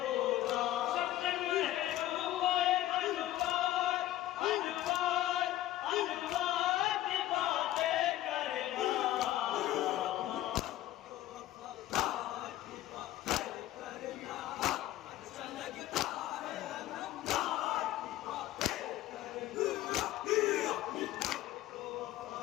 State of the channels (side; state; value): right; quieter; 14.4 dB